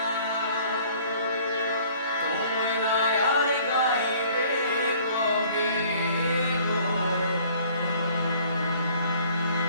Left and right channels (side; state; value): both; inverted; correlation -0.55